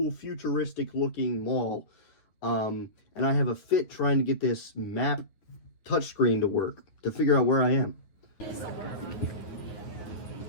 futuristic looking mall. And I have a fit trying to get this map touchscreen to work, to figure out where I am.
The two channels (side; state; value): right; late; 9.7 ms